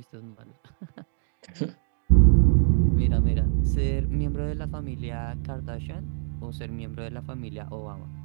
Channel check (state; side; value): silent; left; digital silence